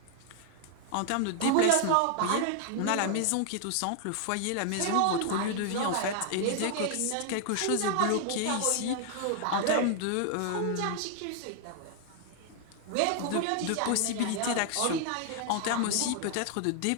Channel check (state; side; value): different; both; correlation 0.00